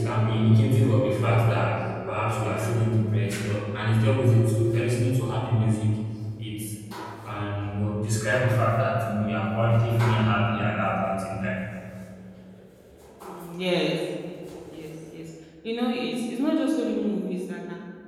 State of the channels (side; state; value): both; identical; correlation 1.00